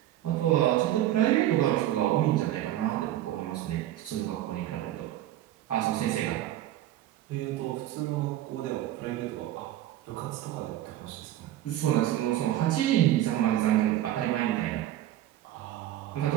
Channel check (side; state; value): left; quieter; 13.3 dB